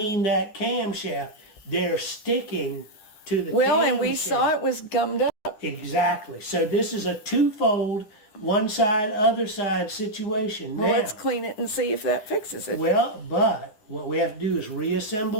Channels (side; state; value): right; late; 9.9 ms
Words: that camshaft. They're sticking to the camshaft. And we saw it was gummed up. Exactly. So this is a twofold, one side, other side situation. Well, now, let's clean it and see if that fixes it. Well, but what we have to do is